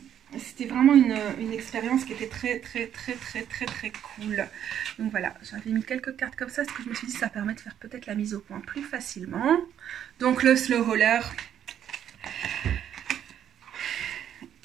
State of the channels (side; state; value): left; quieter; 9.9 dB